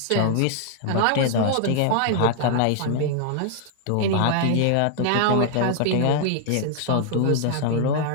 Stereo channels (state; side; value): different; both; correlation 0.00